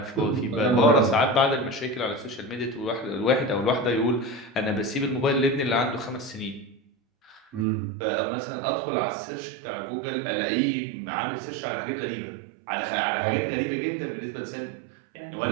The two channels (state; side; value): drops out; left; at 7.7 s